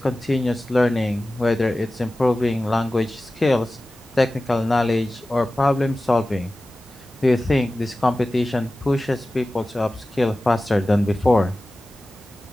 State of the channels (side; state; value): both; normal; correlation 0.96